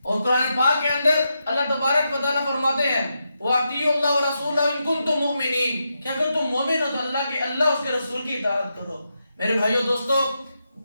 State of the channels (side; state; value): both; inverted; correlation -0.85